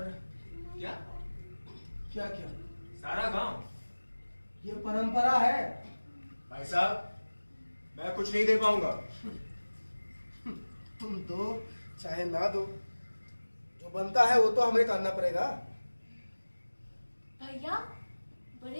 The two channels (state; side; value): inverted; both; correlation -1.00